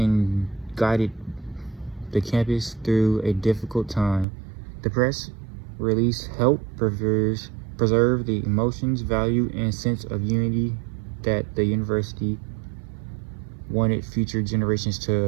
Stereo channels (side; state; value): left; drops out; at 4.2 s